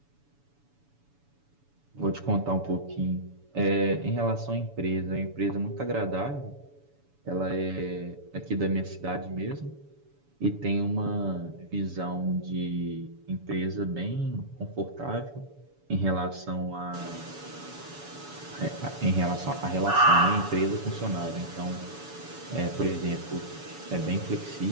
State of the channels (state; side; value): late; left; 7.0 ms